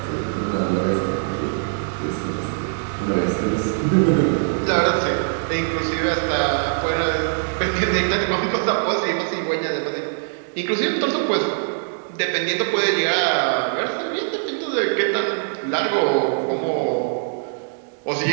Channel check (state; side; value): silent; left; digital silence